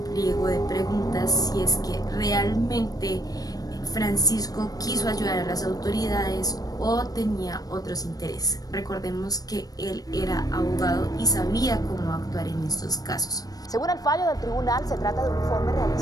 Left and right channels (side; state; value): right; late; 0.18 ms